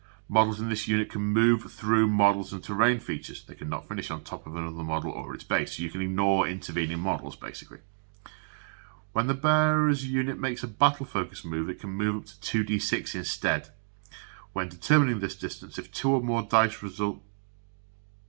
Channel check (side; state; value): left; silent; digital silence